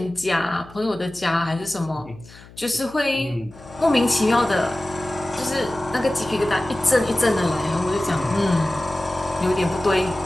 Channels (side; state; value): left; noise; hum, 21 dB below the sound